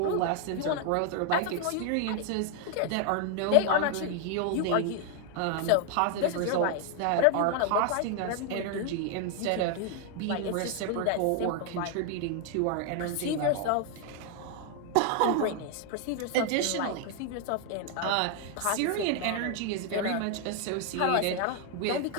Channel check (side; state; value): both; different; correlation 0.01